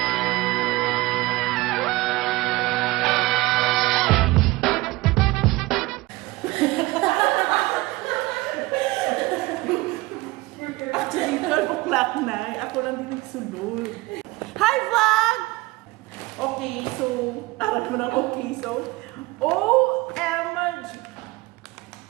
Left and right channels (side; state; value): left; quieter; 20.9 dB